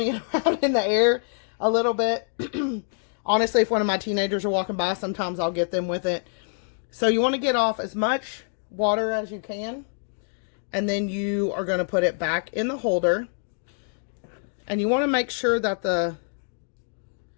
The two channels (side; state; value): right; silent; digital silence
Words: it around in the air a little bit. Honestly, if one of my teenagers are walking by, sometimes I'll get them with it. So you want to get off as much water as you can. And then you are going to put it back in the holder. And you want to make sure that the